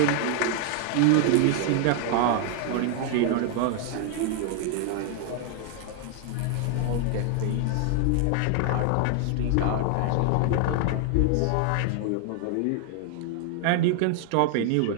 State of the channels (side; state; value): both; different; correlation 0.00